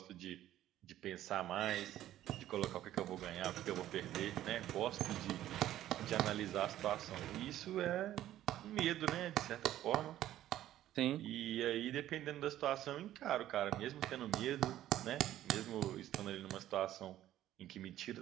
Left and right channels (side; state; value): left; quieter; 13.0 dB